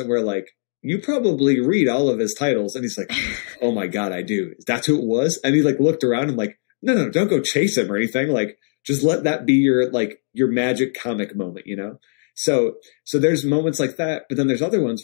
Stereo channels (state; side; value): silent; right; digital silence